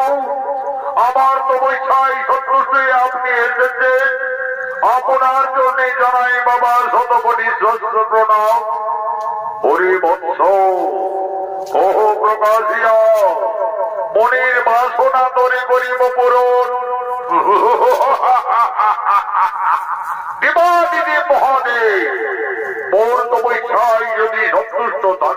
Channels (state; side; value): identical; both; correlation 1.00